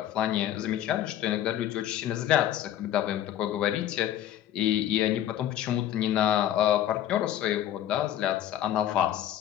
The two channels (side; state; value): right; quieter; 11.8 dB